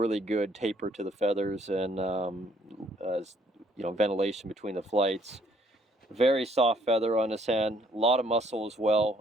good taper to the feathers, and ventilation between the flights. Very soft feather on this hen, a lot of muscle as well.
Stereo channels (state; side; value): normal; both; correlation 0.65